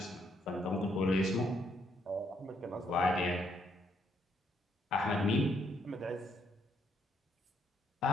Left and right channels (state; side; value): normal; both; correlation 0.73